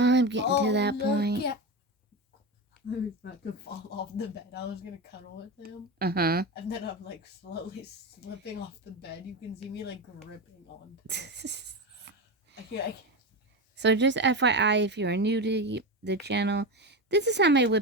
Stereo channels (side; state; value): both; normal; correlation 0.19